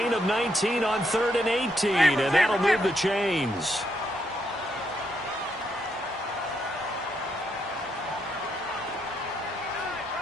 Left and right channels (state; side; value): normal; both; correlation 0.77